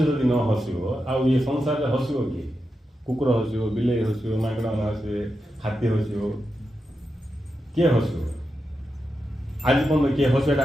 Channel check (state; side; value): normal; both; correlation 0.88